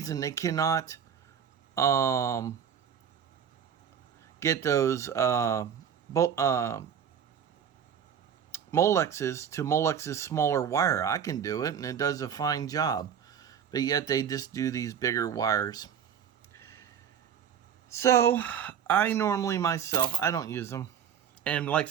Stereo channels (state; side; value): quieter; left; 8.3 dB